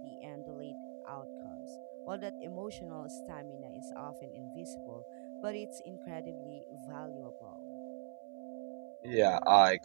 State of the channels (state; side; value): silent; left; 51 dB below the other